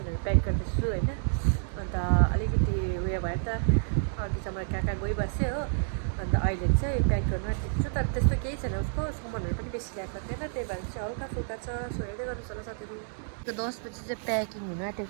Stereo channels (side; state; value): left; silent; digital silence